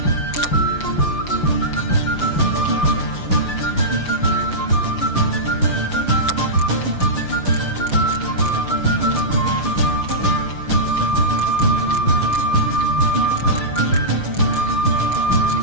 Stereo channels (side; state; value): right; late; 5.8 ms